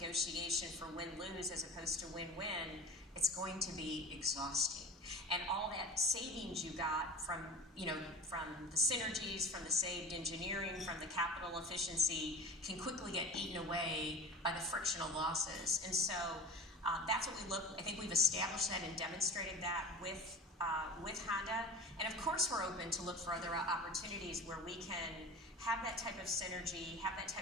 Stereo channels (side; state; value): both; normal; correlation 0.34